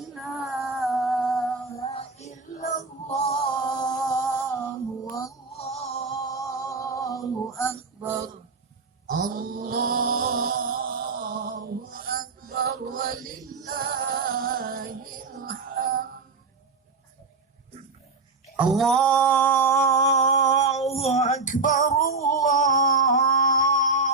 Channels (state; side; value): quieter; left; 4.1 dB